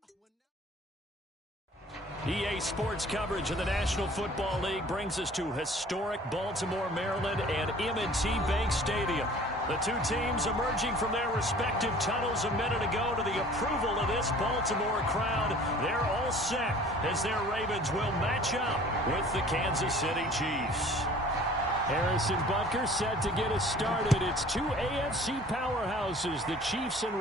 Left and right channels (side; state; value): both; normal; correlation 0.49